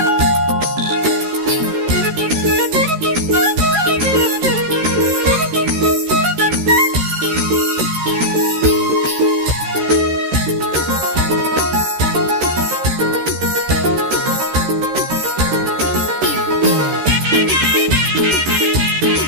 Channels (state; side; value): late; left; 13 ms